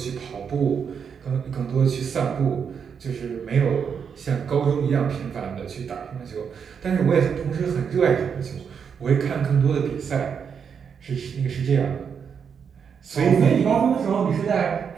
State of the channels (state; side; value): quieter; left; 6.9 dB